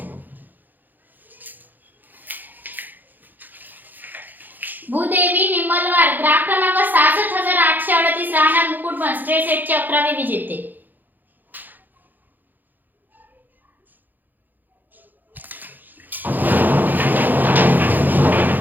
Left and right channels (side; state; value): left; late; 0.086 ms